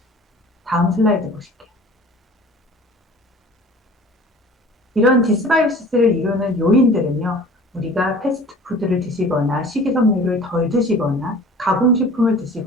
다음 슬라이드 보실게요. 이런 디스바이오시스를 이루는 요인들은요, 우리가 패스트푸드를 드시거나 식이섬유를 덜 드시거나 가공식품을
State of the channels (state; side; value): normal; both; correlation 0.45